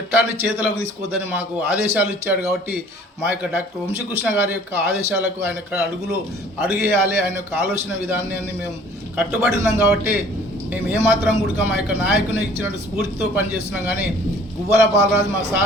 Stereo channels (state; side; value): normal; both; correlation 0.52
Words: చేతులకు తీసుకోవద్దని మాకు ఆదేశాలు ఇచ్చాడు. కాబట్టి మా యొక్క డాక్టర్ వంశీకృష్ణ గారి యొక్క ఆదేశాలకు ఆయన అడుగేయాలి, ఆయన యొక్క ఆలోచన విధానాన్ని మేము కట్టుబడి ఉన్నాం. కాబట్టి మేము ఏమాత్రం కూడా మా యొక్క నాయకుని ఇచ్చినట్టు స్ఫూర్తితో పనిచేస్తున్నాం. కానీ గువ్వల బాలరాజు మా